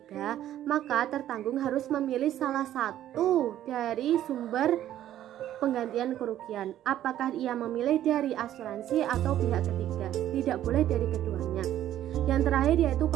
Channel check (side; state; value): left; quieter; 12.2 dB